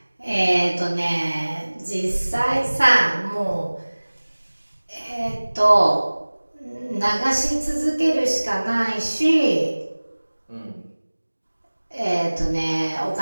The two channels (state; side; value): inverted; both; correlation -1.00